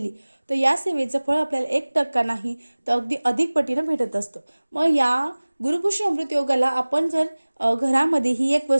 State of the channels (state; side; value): inverted; both; correlation -1.00